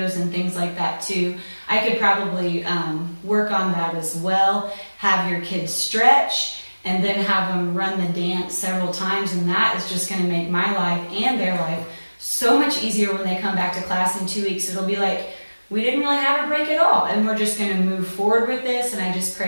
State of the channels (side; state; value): both; inverted; correlation -1.00